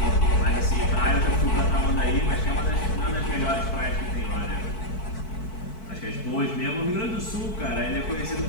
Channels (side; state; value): right; late; 4.6 ms